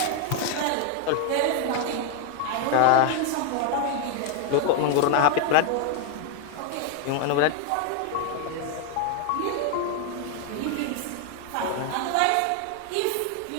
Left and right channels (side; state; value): both; different; correlation 0.01